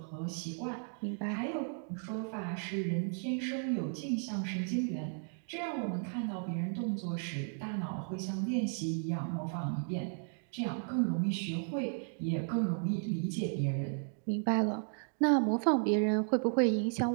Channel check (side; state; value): left; silent; 55 dB below the other